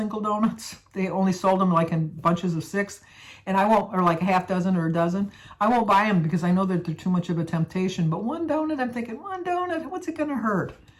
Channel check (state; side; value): identical; both; correlation 1.00